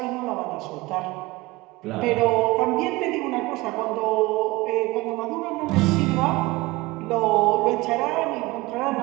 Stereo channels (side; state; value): left; quieter; 21.2 dB